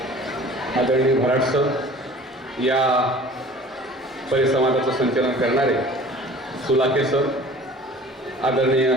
आदरणीय भराट सर, या परिसंवादाचं संचालन करणारे सुलाके सर, आदरणीय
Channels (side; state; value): both; normal; correlation 0.45